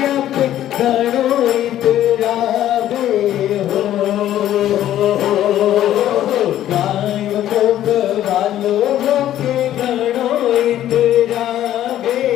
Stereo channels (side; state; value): right; quieter; 12.3 dB